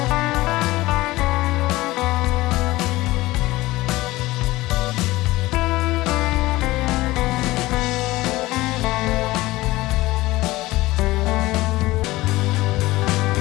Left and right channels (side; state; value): right; quieter; 18.8 dB